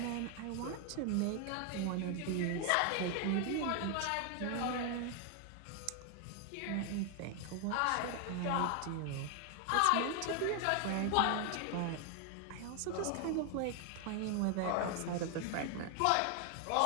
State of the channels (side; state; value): both; different; correlation 0.00